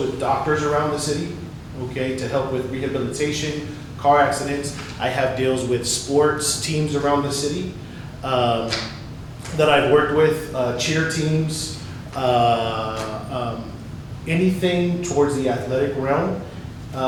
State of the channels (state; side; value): identical; both; correlation 1.00